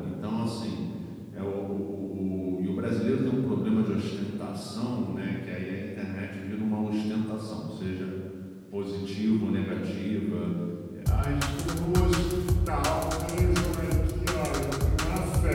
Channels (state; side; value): identical; both; correlation 1.00